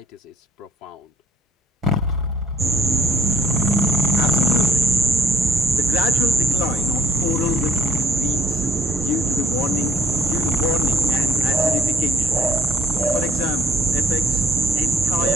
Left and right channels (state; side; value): normal; both; correlation 0.64